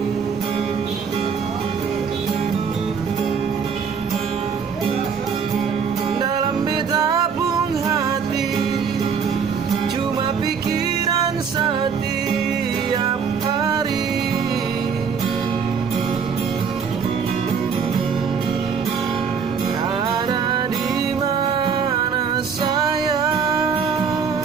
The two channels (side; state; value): left; quieter; 6.4 dB